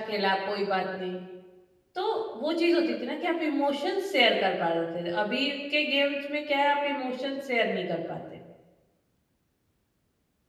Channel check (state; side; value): identical; both; correlation 1.00